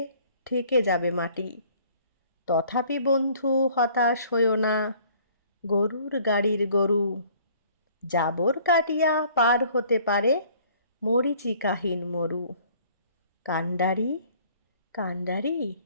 ঠেকে যাবে মাটি। তথাপি বন্ধু হতাশ হইও না, গরুর গাড়ির গরু, জাবর কাটিয়া পার হতে পারে মরীচিকাহীন মরু। কান্ডারি কান্ডারি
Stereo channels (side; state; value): both; inverted; correlation -0.56